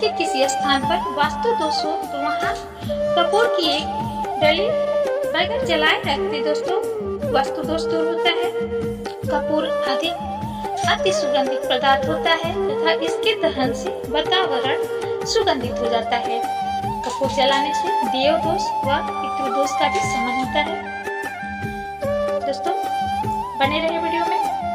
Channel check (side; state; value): both; identical; correlation 1.00